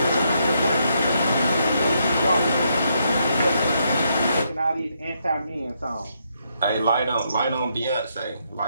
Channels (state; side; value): inverted; both; correlation -0.76